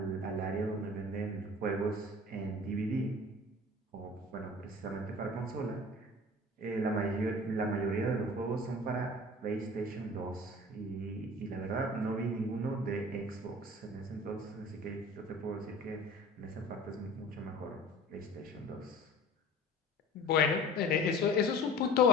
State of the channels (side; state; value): both; normal; correlation 0.42